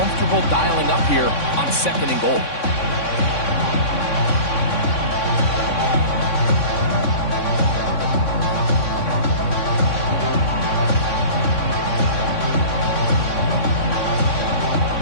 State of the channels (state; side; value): late; right; 3.6 ms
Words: dialing up here on 2nd and goal.